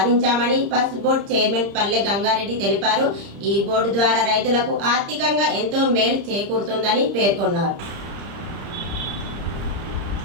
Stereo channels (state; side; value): late; left; 30 ms